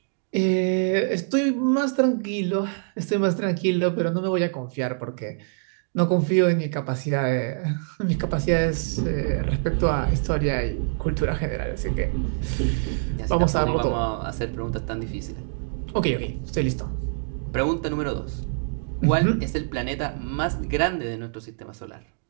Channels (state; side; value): silent; left; digital silence